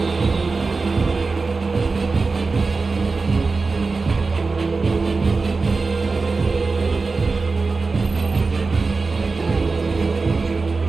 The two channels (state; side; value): quieter; left; 4.1 dB